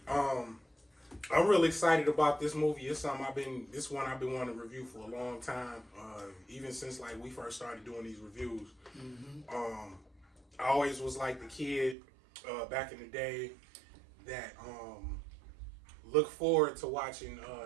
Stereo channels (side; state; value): left; drops out; at 12.0 s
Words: I'm really excited about this movie. It's something I've been wanting to review for a long time. Even since like we first started doing these reviews. Mm-hmm. I always was like the kid back in the day that looked forward to watching